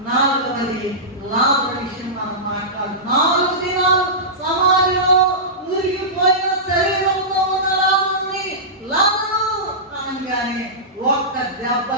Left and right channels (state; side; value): normal; both; correlation -0.17